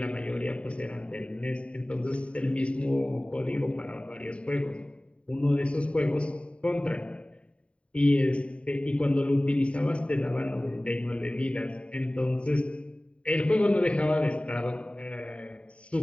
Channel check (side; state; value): right; late; 0.061 ms